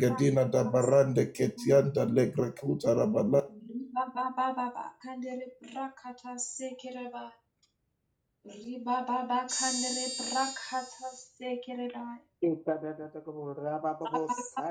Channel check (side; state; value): both; identical; correlation 1.00